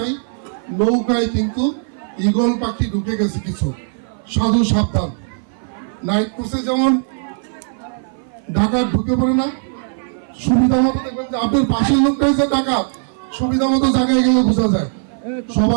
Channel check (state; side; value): silent; left; 55 dB below the other